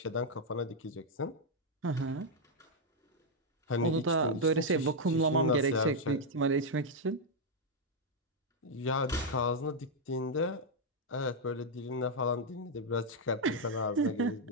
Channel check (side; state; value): both; normal; correlation -0.01